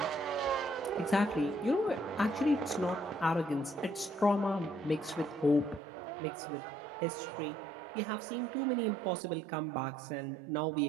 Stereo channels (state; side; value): drops out; left; at 5.8 s